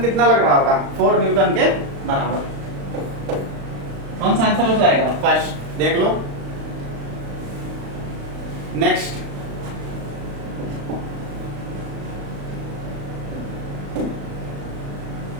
कितना लग रहा होगा 4 न्यूटन के बराबर. कौन सा आंसर हो जाएगा फर्स्ट. देख लो next.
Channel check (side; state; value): left; late; 35 ms